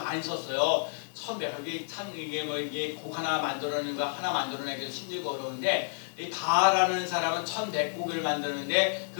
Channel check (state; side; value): silent; right; digital silence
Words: 썼어요. 1100곡이 참 이게 곡 하나 만들어내는 거 하나 만들어내기도 힘들고 어려운데 이 바라는 사람은 1100곡을 만드는데